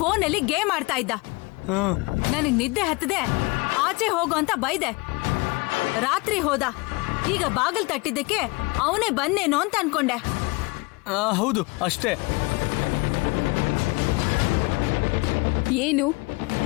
ಗೇಮ್ ಆಡ್ತಾ ಇದ್ದ. ನನಗ್ ನಿದ್ದೆ ಹತ್ತದೆ, ಆಚೆ ಹೋಗು ಅಂತ ಬೈದೆ. ರಾತ್ರಿ ಹೋದ. ಈಗ ಬಾಗಿಲ್ ತಟ್ಟಿದ್ದಕ್ಕೆ ಅವನೇ ಬಂದೇನೋ ಅಂತ ಅನ್ಕೊಂಡೆ. ಹೌದು, ಅಷ್ಟೇ. ಏನು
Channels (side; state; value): right; quieter; 26.3 dB